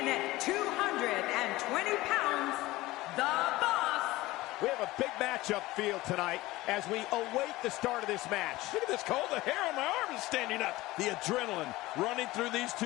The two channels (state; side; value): quieter; right; 18.7 dB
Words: at 220 pounds, the Boss. We have a big matchup field tonight as we await the start of this match. Look at this, Cole. The hair on my arm is standing up. The adrenaline running through these